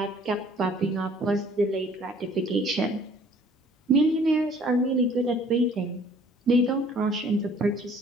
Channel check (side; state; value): both; normal; correlation 0.55